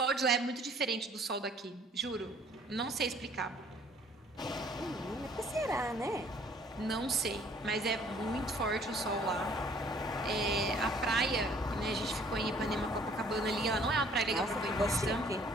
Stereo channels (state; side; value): normal; both; correlation 0.57